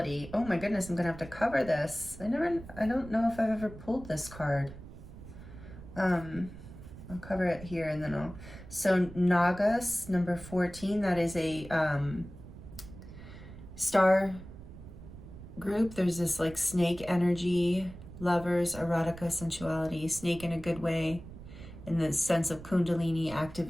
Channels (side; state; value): right; noise; rumble, 15 dB below the sound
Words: Oh my goodness, I'm gonna have to cover this. I don't know if I've ever pulled this card. I'll cover it here and then so Nagas, number 14, that is a star group. There's this like snake energy, lovers, erotica, sensuality, snake in a good way, in the sense of kundalini